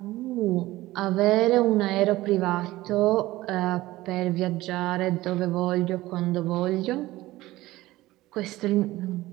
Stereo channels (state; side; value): quieter; left; 17.6 dB